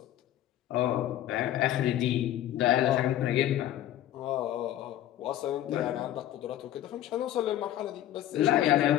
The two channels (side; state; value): right; quieter; 12.7 dB